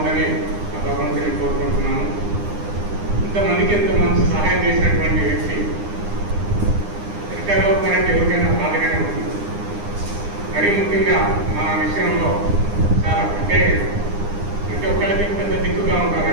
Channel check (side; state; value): left; late; 9.8 ms